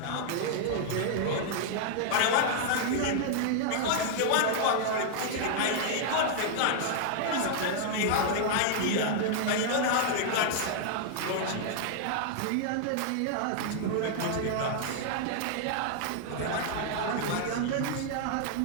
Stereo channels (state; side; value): different; both; correlation -0.01